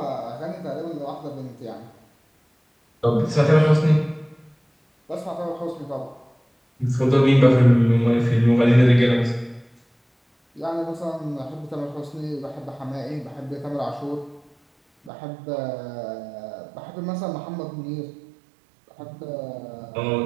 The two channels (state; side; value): drops out; left; at 15.1 s